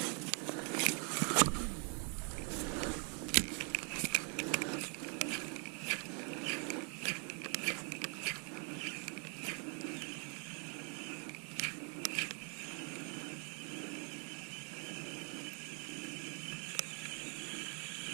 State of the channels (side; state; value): left; quieter; 38.8 dB